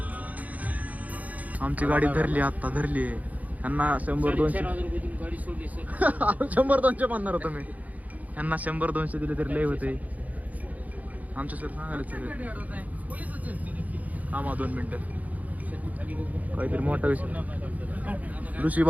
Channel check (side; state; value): left; late; 0.076 ms